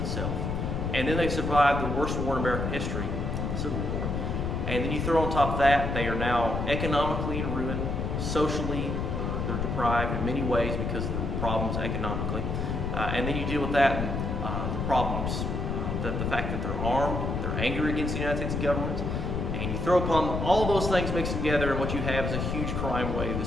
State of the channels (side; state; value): left; noise; rumble, 1 dB below the sound